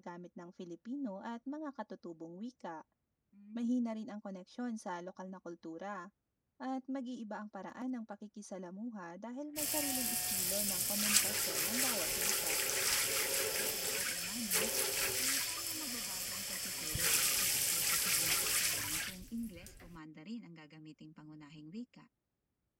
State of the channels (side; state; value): both; identical; correlation 1.00